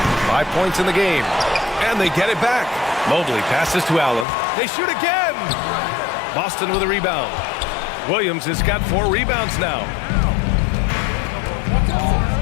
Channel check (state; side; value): drops out; right; at 4.2 s